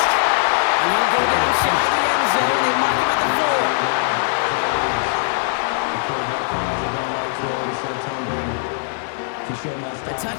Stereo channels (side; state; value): right; silent; 59 dB below the other